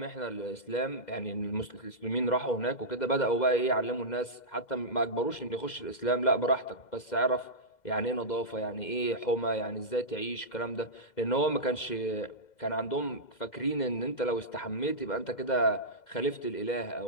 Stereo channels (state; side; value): late; right; 2.0 ms